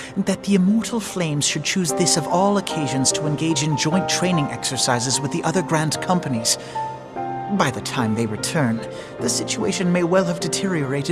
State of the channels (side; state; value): both; identical; correlation 1.00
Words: That the Immortal Flames should choose this of all occasions to engage in joint training exercises with the other Grand Companies. By the time they return, the situation may well have